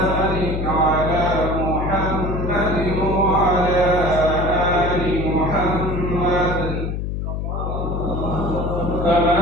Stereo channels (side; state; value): left; noise; hum, 3 dB below the sound